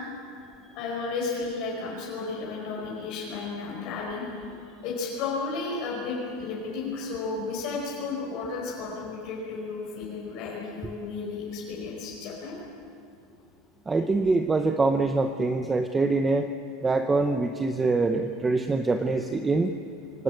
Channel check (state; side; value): normal; both; correlation 0.67